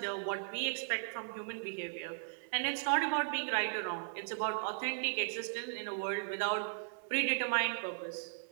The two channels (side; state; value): left; silent; 53 dB below the other